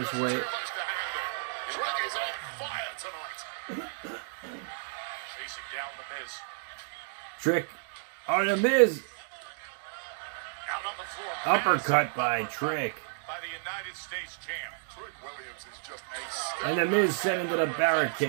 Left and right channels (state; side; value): silent; left; digital silence